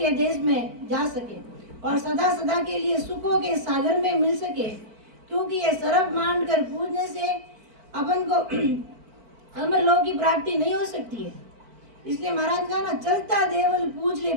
देश में जा सके और सदा सदा के लिए सुखों के सागर में मिल सके। क्योंकि ये सर्प मांड कर पूजने से अपन को अमर लोक की प्राप्ति नहीं हो सकती है। इसलिए महाराज कहा ना, चलता देवल पूज ले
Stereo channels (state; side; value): late; left; 4.5 ms